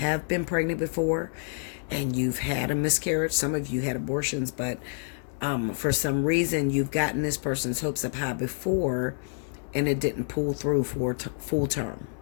been pregnant before and you've had a miscarriage. Some of you had abortions, but for some reason you've gotten this person's hopes up high before and it didn't pull through for full term.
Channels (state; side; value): silent; right; digital silence